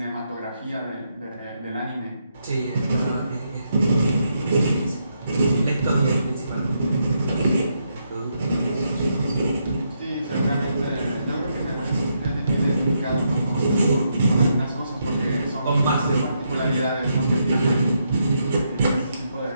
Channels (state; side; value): inverted; both; correlation -0.79